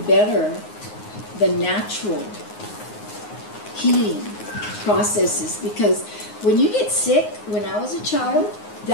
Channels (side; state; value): right; late; 9.6 ms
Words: better the natural healing processes? Because when you get sick, when I was a child,